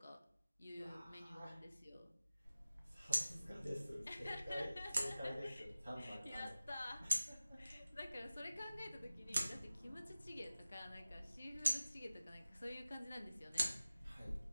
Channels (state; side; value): inverted; both; correlation -0.96